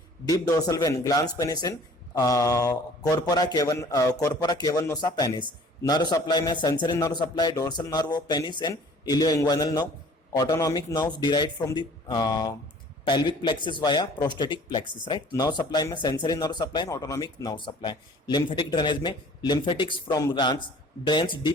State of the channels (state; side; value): normal; both; correlation 0.50